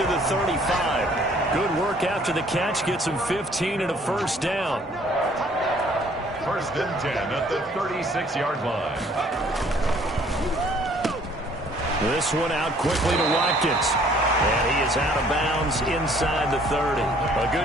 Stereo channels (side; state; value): both; normal; correlation 0.59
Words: the 35. Good work after the catch. Gets him 15 and a 1st down. 1st and 10 at the 36-yard line. This one out quickly to Watkins. And he is out of bounds inside the 30. A